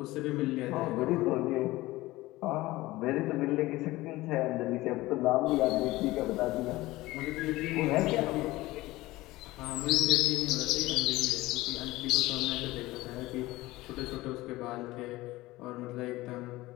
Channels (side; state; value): right; quieter; 18.7 dB